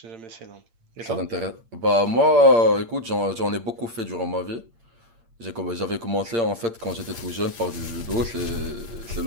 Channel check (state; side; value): late; left; 8.7 ms